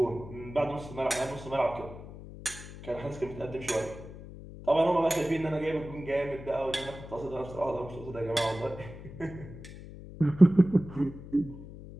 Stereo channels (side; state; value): left; noise; hum, 14 dB below the sound